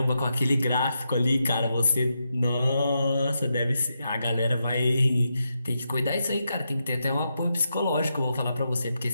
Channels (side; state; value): both; inverted; correlation -0.85